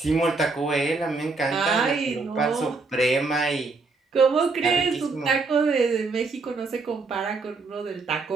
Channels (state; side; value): quieter; left; 4.0 dB